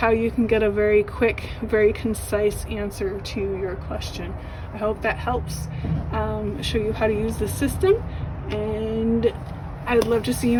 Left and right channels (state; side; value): identical; both; correlation 1.00